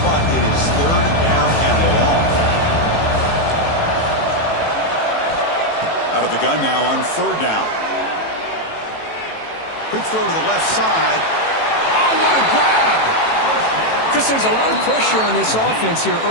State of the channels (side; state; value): right; late; 18 ms